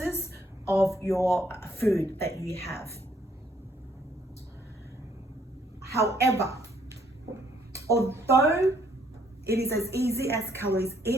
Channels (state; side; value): normal; both; correlation 0.68